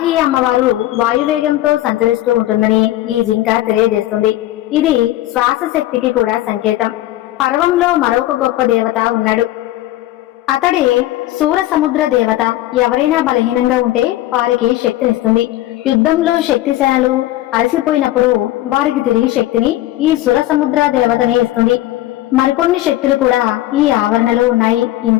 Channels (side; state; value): right; quieter; 15.3 dB